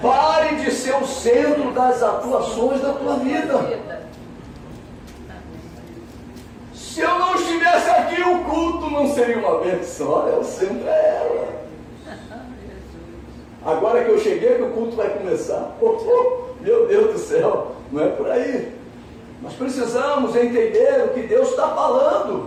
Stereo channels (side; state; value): both; identical; correlation 1.00